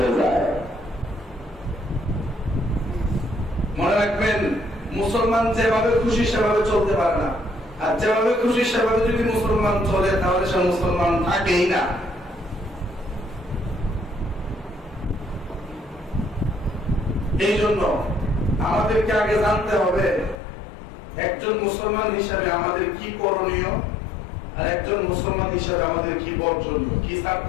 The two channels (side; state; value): right; drops out; at 20.4 s